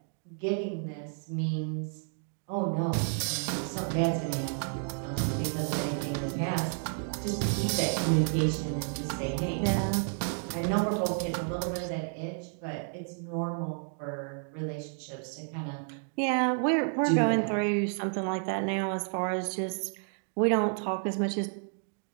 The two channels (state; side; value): silent; left; 57 dB below the other